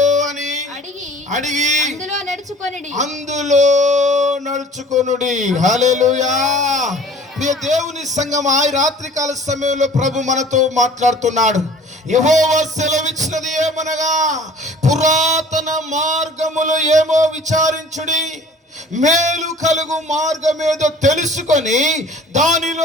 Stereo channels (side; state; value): both; normal; correlation 0.48